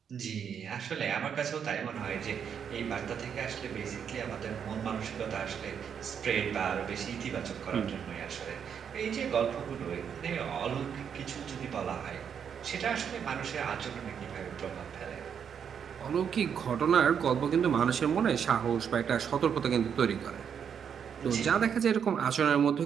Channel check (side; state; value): left; quieter; 7.6 dB